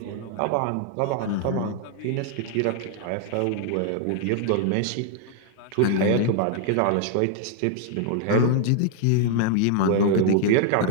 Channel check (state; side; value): different; both; correlation 0.00